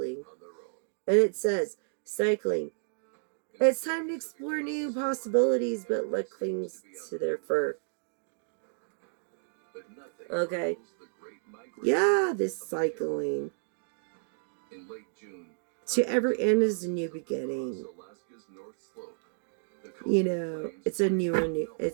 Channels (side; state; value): left; silent; digital silence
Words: on their own. And it says, cycling. It's time to explore new possibilities, but luck clings to their fur. But nothing Okay. rivals the Great Migration Yeah, this of the cycling. caribou. In late June, To every end is a new beginning. across Alaska's North Slope, the You coastal know, plains it's a bridge